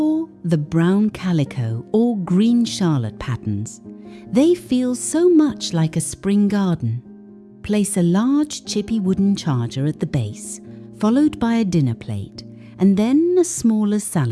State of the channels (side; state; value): both; identical; correlation 1.00